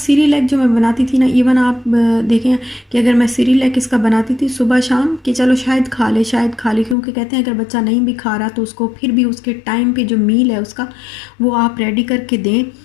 जो मैं बनाती थी ना, इवन आप देखें कि अगर मैं सिरिलैक इसका बनाती थी सुबह शाम, कि चलो शायद खा ले शायद खा ले, क्योंकि कहते हैं अगर बच्चा नहीं भी खा रहा तो उसको फिर भी उसके टाइम पे जो मील है उसका वो आप रेडी करके दें,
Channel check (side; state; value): right; drops out; at 7.0 s